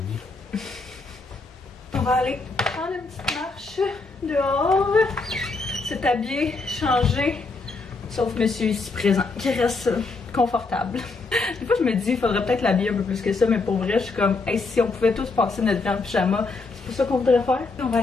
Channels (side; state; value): right; quieter; 3.8 dB